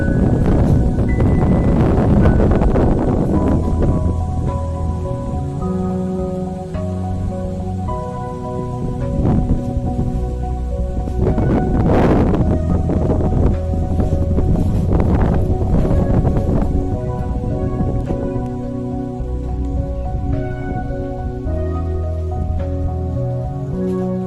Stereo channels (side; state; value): both; identical; correlation 1.00